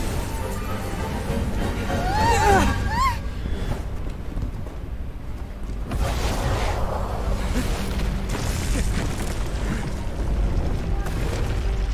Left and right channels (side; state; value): both; identical; correlation 1.00